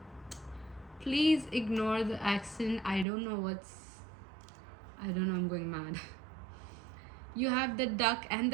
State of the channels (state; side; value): drops out; left; at 3.1 s